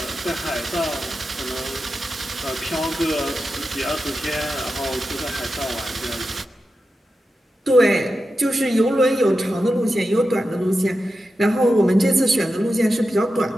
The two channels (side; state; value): both; normal; correlation 0.90